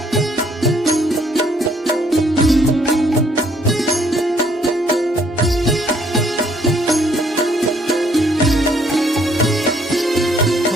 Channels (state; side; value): normal; both; correlation 0.65